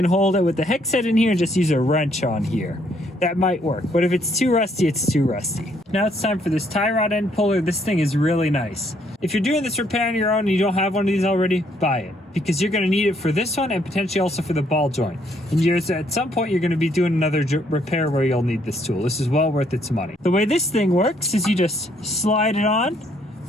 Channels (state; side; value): normal; both; correlation 0.69